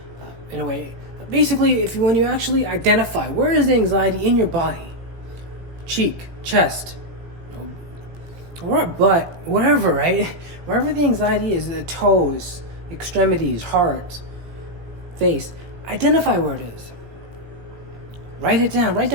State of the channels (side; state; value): left; late; 18 ms